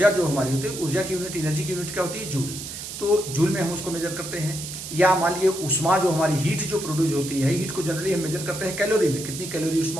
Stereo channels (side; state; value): right; noise; hiss, 9 dB below the sound